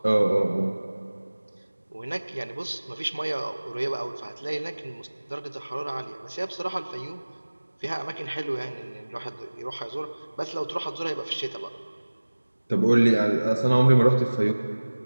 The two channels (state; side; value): inverted; both; correlation -1.00